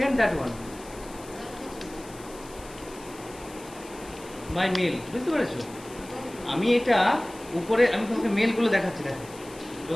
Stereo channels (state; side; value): noise; left; hiss, 19 dB below the sound